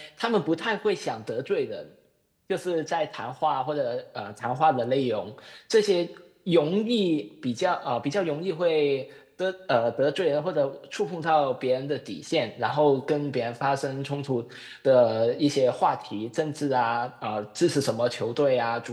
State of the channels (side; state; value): both; identical; correlation 1.00